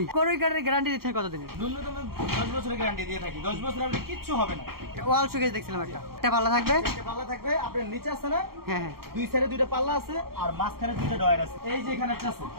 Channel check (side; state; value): left; late; 0.94 ms